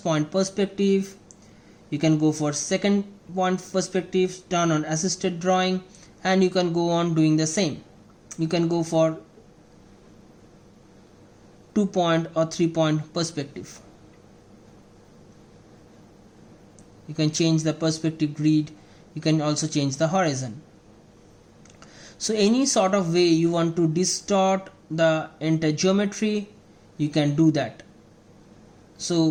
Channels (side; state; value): both; identical; correlation 1.00